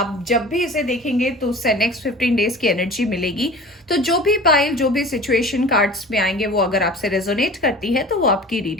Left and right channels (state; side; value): normal; both; correlation 0.40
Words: जब भी इसे देखेंगे तो उससे नेक्स्ट 15 डेज की एनर्जी मिलेगी। तो जो भी पाइल, जो भी सिचुएशन कार्ड्स में आएंगे वो अगर आपसे रेजोनेट करती है तो वो आपकी